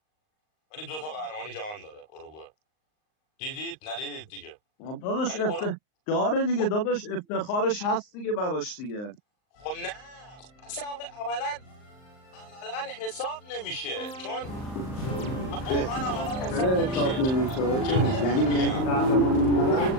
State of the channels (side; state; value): right; late; 38 ms